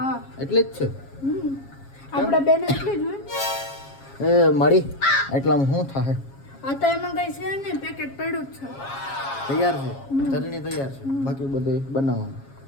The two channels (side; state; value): right; late; 7.3 ms